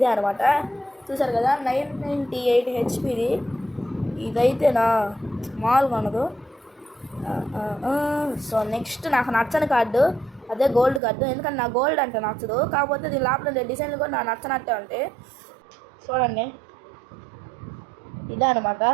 అనమాట, చూసారు కదా, 998 హెచ్పిది. ఇదైతే నా మామూలుగా ఉండదు. సో నెక్స్ట్ నాకు నచ్చని కార్డు అదే గోల్డ్ కార్డు, ఎందుకంటే నా గోల్డ్ అంటే నచ్చదు, కాకపోతే దీని లోపల డిజైన్లు కూడా నాకు నచ్చనట్టే ఉంటాయి. చూడండి ఇదే అనమాట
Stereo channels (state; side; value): drops out; left; at 11.0 s